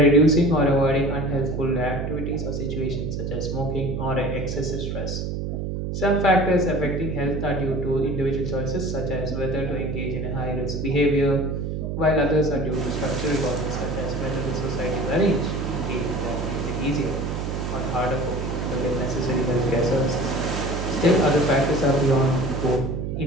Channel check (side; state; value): right; noise; hum, 3 dB below the sound